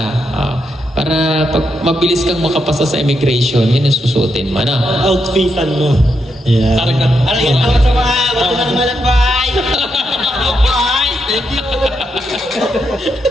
para pag mabilis kang makapasa sa immigration, yan ang susuotin mo, no? Outfitan mo. Yeah. Ano yan?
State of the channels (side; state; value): both; normal; correlation 0.82